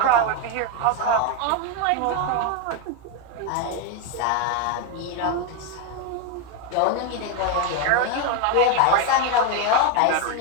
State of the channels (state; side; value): different; both; correlation 0.02